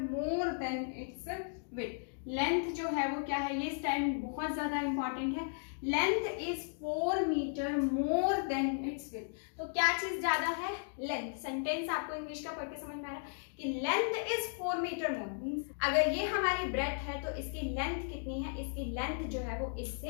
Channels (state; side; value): silent; right; digital silence